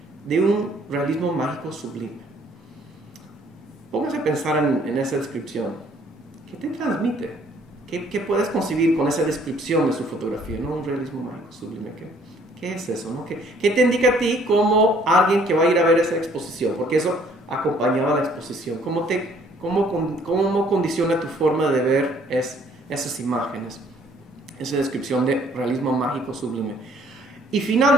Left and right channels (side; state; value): both; normal; correlation 0.61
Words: de un realismo mágico sublime. Póngase a pensar en esa descripción. ¿Qué te transmite? ¿Qué puedes concebir con esa descripción de su fotografía? ¿No? Un realismo mágico sublime. ¿Qué es eso? ¿No? ¿Qué te indica a ti como alguien que va a ir a ver esa exposición? Porque eso acompañaba la exposición. ¿Cómo condiciona tu forma de ver esas imágenes? Esa descripción de realismo mágico sublime. Y